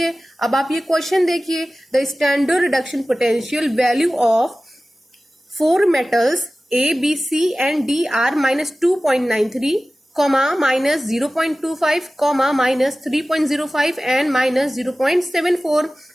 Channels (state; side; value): normal; both; correlation 0.96